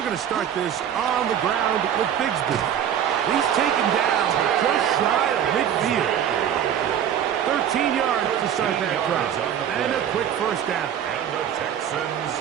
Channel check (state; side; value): quieter; left; 9.5 dB